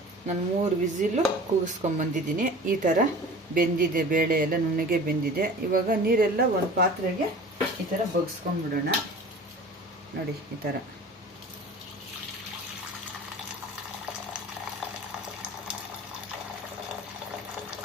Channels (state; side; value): normal; both; correlation 0.40